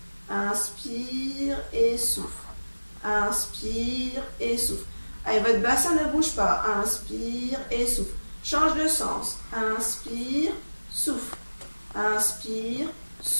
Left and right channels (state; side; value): inverted; both; correlation -1.00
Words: Inspire et souffle. Inspire et souffle. Allez, votre bassin ne bouge pas. Inspire et souffle. Change de sens. Inspire, souffle. Inspire,